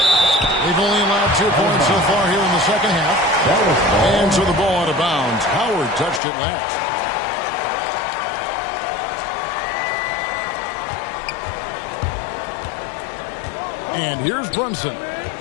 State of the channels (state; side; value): drops out; right; at 6.2 s